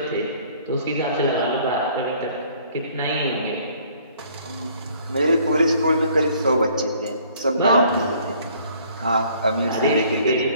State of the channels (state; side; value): inverted; both; correlation -0.59